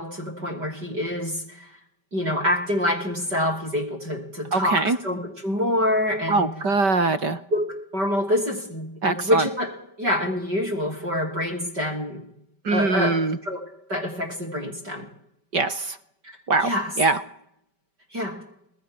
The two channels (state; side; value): late; left; 5.2 ms